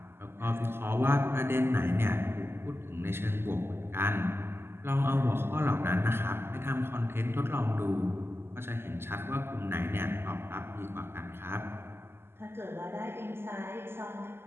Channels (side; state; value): left; late; 0.12 ms